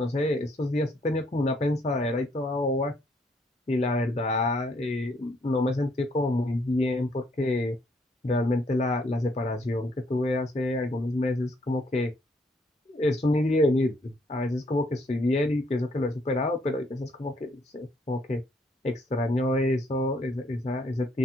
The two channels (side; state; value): both; normal; correlation 0.69